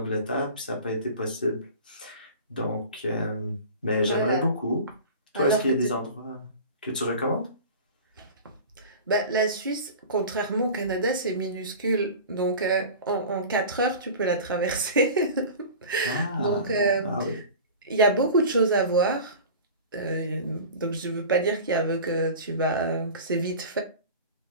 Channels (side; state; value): both; inverted; correlation -0.36